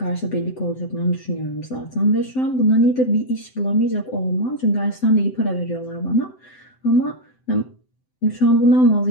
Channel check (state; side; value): late; right; 7.8 ms